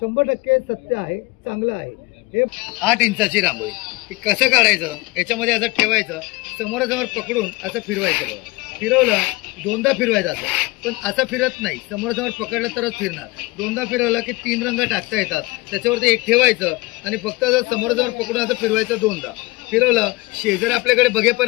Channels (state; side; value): quieter; right; 22.1 dB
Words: सत्य आहे, चांगलं आहे. हे 8 इंचाची रांगोळी. हे कसं काढायचं, याच्यामध्ये असं ठेवायचं, समोरासमोर पकडून असं फिरवायचं. बघा, फिरवलं, दोनदा फिरवायचं असं, पण असं फिरत नाही, समोरासमोर पकडलं तरच फिरणार. दोनदा फिरवलं की 3 रंग टाकता येतात. त्याच्यावरती एक ठेवायचं आणि फक्त समोरासमोर पकडून असं फिरवायचं. दोनदा फिरवलं, शेजारी आपल्याकडे